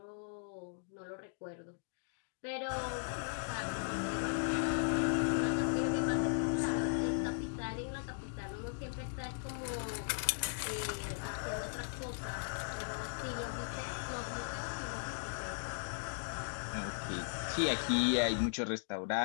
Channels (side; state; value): right; silent; digital silence